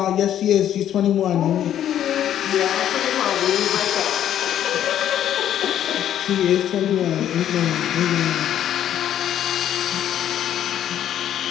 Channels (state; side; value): quieter; right; 10.8 dB